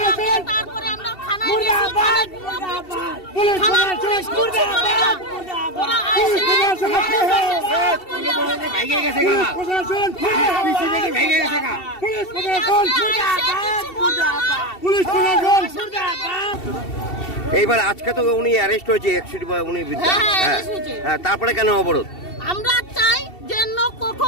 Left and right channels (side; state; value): right; late; 2.7 ms